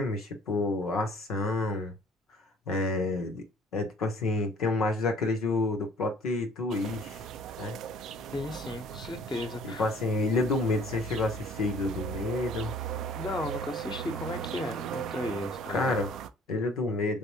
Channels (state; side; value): normal; both; correlation 0.54